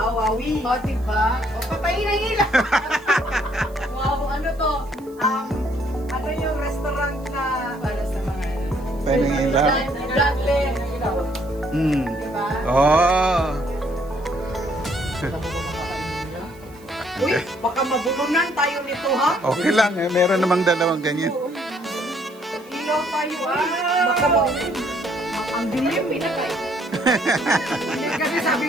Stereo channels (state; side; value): noise; right; hiss, 27 dB below the sound